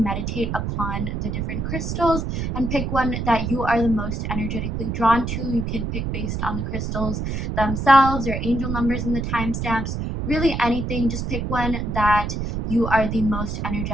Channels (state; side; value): noise; right; rumble, 2 dB below the sound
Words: upon the different crystals and pick one that you are the most energetically drawn to. You can pick based on the crystals themselves, your angel numbers and the timestamps, really anything. Just pick one that you are the most